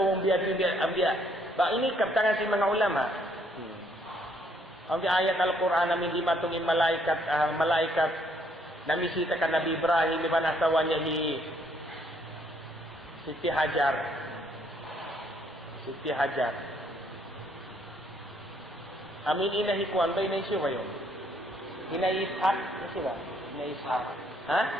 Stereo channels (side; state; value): both; normal; correlation 0.68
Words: ang biya. Ba ini kaptangan si mga ulama. Ang ayat Al-Quran namin di matungin malaikat namisita ka Nabi Ibrahim di ba nasawa niya Siti Hajar. Amin inahikuan ba inaisyo ba yun? Inaishak? Kasi ba? Inaishak. Ha?